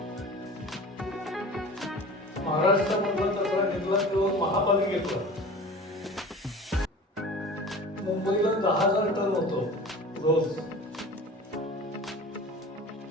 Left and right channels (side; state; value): both; normal; correlation 0.38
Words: महाराष्ट्रामधला कचरा निघाला तेव्हा महापालिकेतला मुंबईला 10,000 टन होतो रोज.